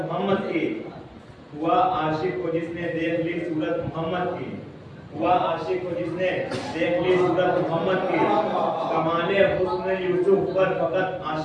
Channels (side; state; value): both; identical; correlation 1.00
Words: मोहम्मद की हुआ आशिक को जिसने देख ली सूरत मोहम्मद की हुआ आशिक को जिसने देख ली सूरत मोहम्मद की कमाले हुस्न यूसुफ पर फकत